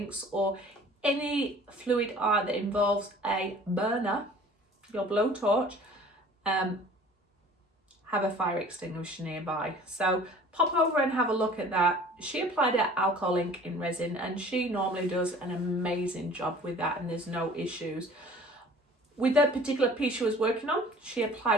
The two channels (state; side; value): normal; both; correlation 0.48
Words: or any fluid art that involves a burner, your blowtorch, have a fire extinguisher nearby. So pop over and have a look at that. She applied her alcohol ink in resin and she normally does an amazing job with that, and there's no issues. With that particular piece she was working on, she